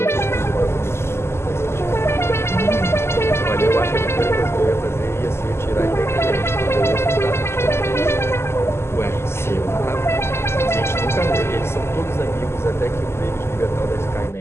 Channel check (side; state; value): right; late; 0.12 ms